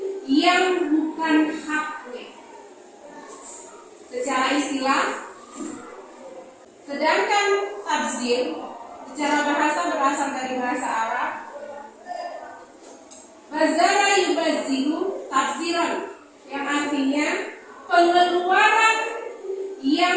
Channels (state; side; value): identical; both; correlation 1.00